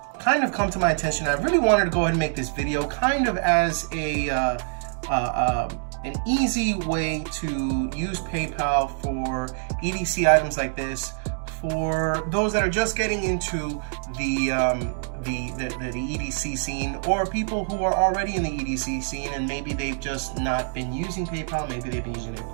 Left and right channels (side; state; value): left; silent; digital silence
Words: kind of come to my attention. I really wanted to go ahead and make this video kind of as an easy way to use PayPal for EDC items like this, for those that are just getting into the EDC scene, or people who are already in the EDC scene and maybe they've just not been using PayPal, maybe they've been using their